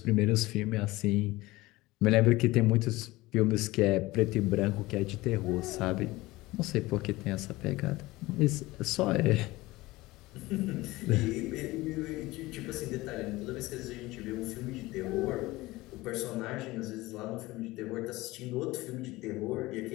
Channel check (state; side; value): quieter; right; 19.7 dB